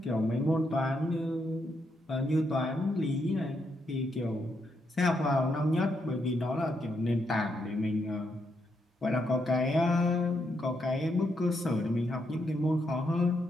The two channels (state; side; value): normal; both; correlation 0.79